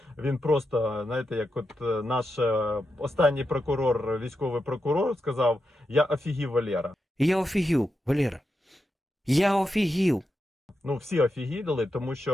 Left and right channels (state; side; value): normal; both; correlation 0.87